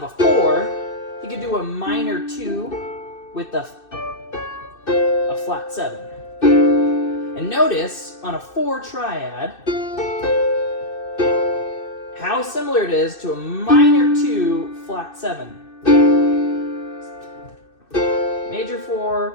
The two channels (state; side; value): late; right; 2.6 ms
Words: a 4, you could do a minor 2 with a flat 7. And notice on a 4 triad how similar it is to a minor 2 flat 7. Major